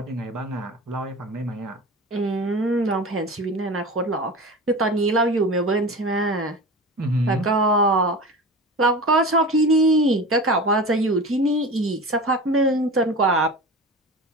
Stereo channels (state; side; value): normal; both; correlation 0.32